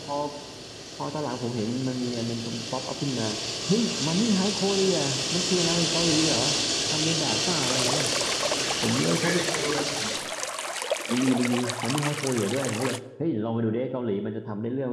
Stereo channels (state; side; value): identical; both; correlation 1.00